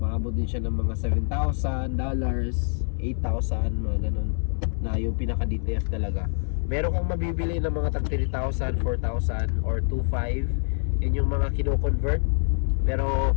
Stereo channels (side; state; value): right; silent; 61 dB below the other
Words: Maabot din siya ng mga $7,000, $8,000, mga ganun, na yung pinaka DTF talaga. Meron kang mabibili ng mga tag 3,000, 4,000 or 2,500. Yun yung mga kino-convert. Pero